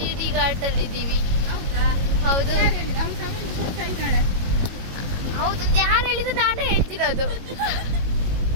ಘಾಟ್ ಅಲ್ಲಿ ಇದ್ದೀವಿ. ಹೌದು ಹೌದು, ಯಾರು ಹೇಳಿದ್ರು ನಾನೇ ಹೇಳ್ತಿರೋದು.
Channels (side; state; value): left; late; 22 ms